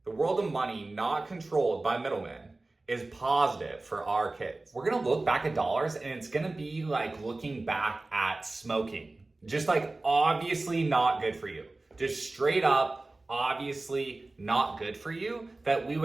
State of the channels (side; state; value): left; quieter; 3.1 dB